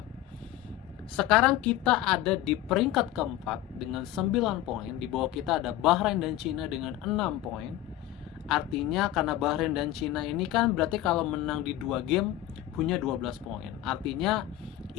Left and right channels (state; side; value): quieter; right; 13.8 dB